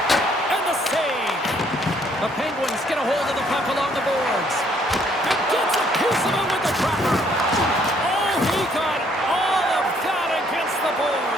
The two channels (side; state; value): both; normal; correlation 0.66